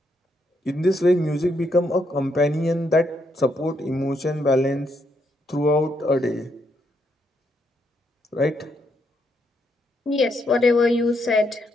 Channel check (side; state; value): both; normal; correlation 0.77